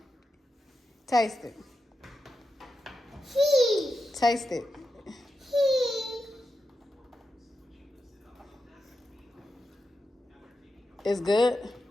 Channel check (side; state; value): both; normal; correlation 0.88